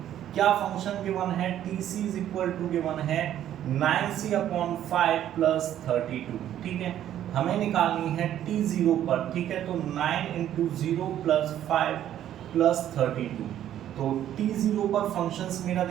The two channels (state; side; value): quieter; left; 11.4 dB